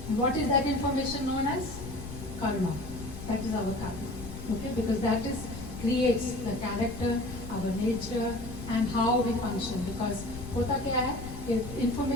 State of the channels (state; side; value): noise; left; rumble, 10 dB below the sound